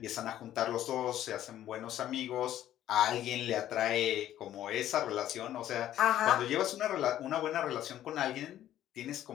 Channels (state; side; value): quieter; right; 12.3 dB